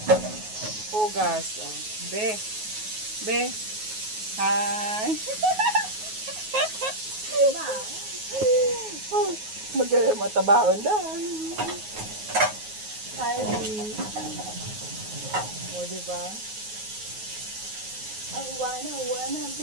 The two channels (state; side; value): late; left; 9.4 ms